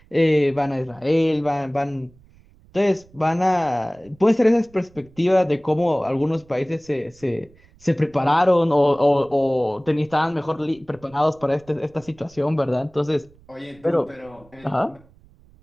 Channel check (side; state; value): right; noise; rumble, 27 dB below the sound